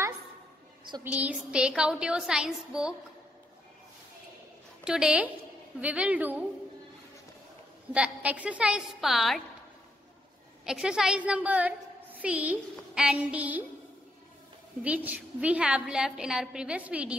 So please take out your science book. Today we will do the exercise part, exercise number C and D, which we have left in our previous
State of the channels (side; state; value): both; normal; correlation 0.77